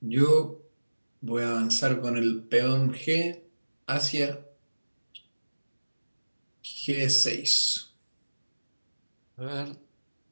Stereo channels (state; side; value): inverted; both; correlation -1.00